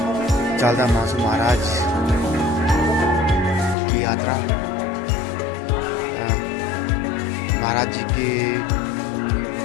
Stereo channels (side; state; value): right; drops out; at 3.8 s